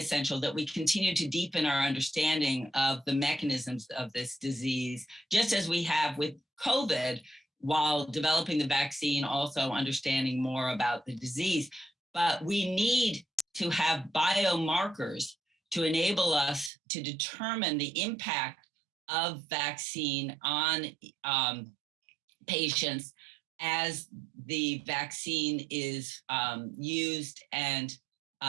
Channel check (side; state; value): left; drops out; at 16.7 s